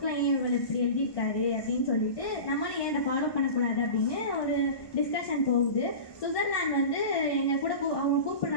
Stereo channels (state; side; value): late; right; 1.2 ms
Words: ஏன் இவர் இப்படி எழுதியிருக்காரு அப்படின்னு சொல்லிட்டு நம்மளும் ஏன் அதை ஃபாலோ பண்ணக்கூடாது அப்படின்னு ஒரு டிஸ்கஷன் போகுது. சுவிட்சர்லாந்து எங்கள் கூட அவங்க